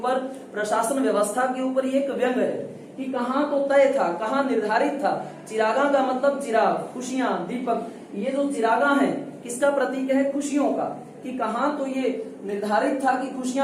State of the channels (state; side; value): identical; both; correlation 1.00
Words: प्रशासन व्यवस्था के ऊपर। ये एक व्यंग है कि कहाँ तो तय था, कहाँ निर्धारित था। चिरागा का मतलब चिराग, खुशियां, दीपक। ये जो चिरागा है किसका प्रतीक है? खुशियों का। कि कहाँ तो ये निर्धारित था कि